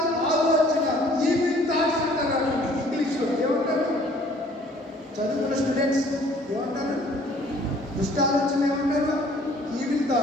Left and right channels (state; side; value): normal; both; correlation 0.56